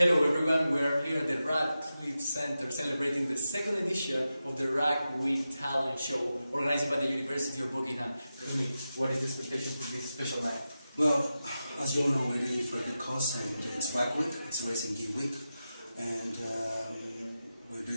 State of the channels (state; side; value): inverted; both; correlation -0.91